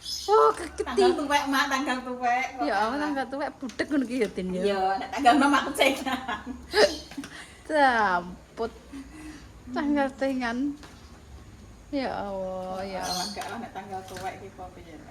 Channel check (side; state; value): both; identical; correlation 1.00